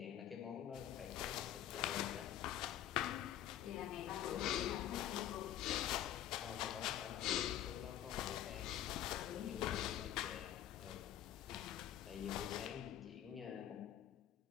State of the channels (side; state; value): right; quieter; 11.6 dB